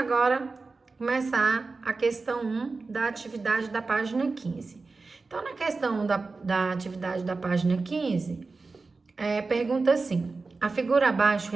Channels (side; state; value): left; quieter; 3.9 dB